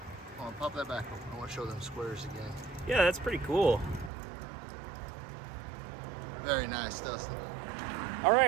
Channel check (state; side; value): drops out; left; at 4.1 s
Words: Hold on, pop that back open. I want to show them squares again. Yeah, that's pretty cool. Very nice, Dustin. All